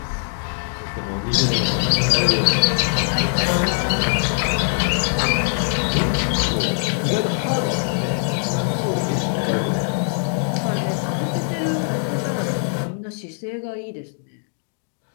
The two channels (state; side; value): silent; right; 64 dB below the other